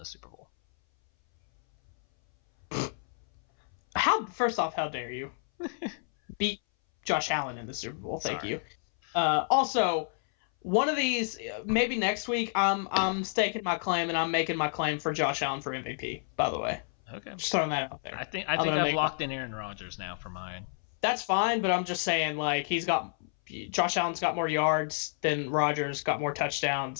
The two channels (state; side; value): silent; right; 58 dB below the other